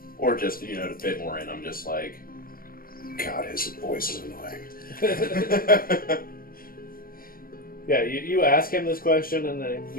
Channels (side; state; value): right; late; 0.42 ms